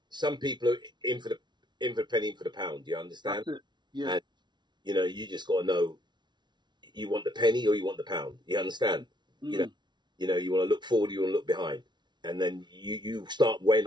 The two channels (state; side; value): late; left; 0.21 ms